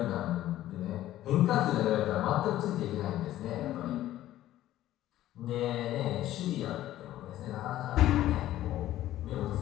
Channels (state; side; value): quieter; right; 13.9 dB